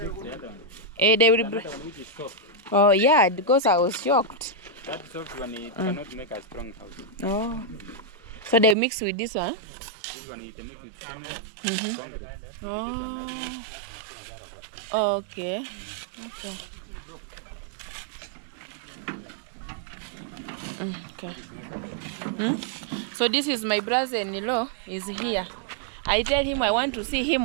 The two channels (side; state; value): left; drops out; at 8.8 s